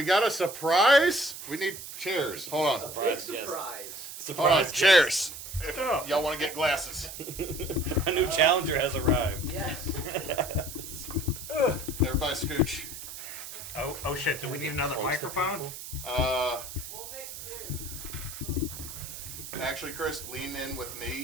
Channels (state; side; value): noise; right; hiss, 10 dB below the sound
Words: got a surprise. We need chairs. Hold on. Surprise. Hold on. Chairs. If y'all want to get glasses. A new challenger has arrived. Yes. Everybody scooch. Oh shit, do we need another microphone? We'll make do. Actually, Chris, lean in with